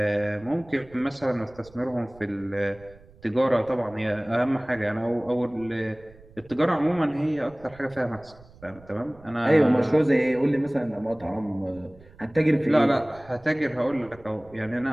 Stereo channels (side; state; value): right; noise; rumble, 24 dB below the sound